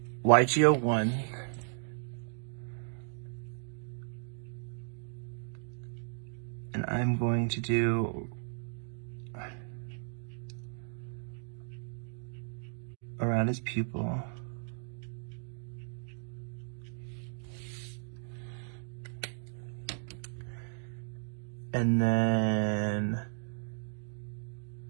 YG01. And I'm going to do around his pupil. And then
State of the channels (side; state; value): left; silent; 54 dB below the other